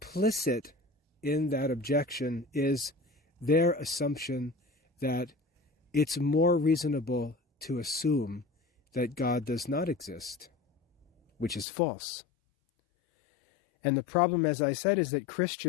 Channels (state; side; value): drops out; right; at 11.7 s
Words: in that objection is their assumption that it's more reasonable to assume that God does not exist, which is false. And the problem, as I said, is that